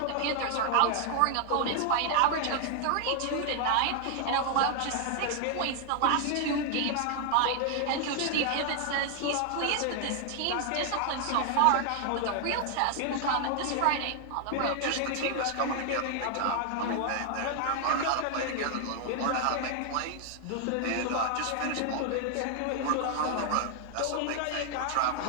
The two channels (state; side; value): different; both; correlation 0.00